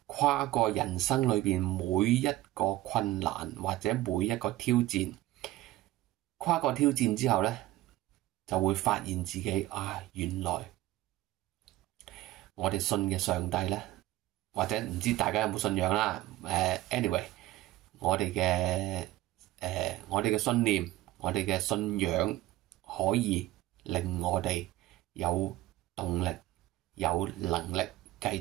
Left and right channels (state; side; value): quieter; left; 16.1 dB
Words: 跨過人生裏邊每一個困難或者每一個挑戰。跨過挑戰之後呢，就會發現自己原來我哋信嘅上帝呢，或者唔知大家有冇信仰啦。anyway，我哋嘅信念，我哋嘅信仰可以令我哋有動力、有能力繼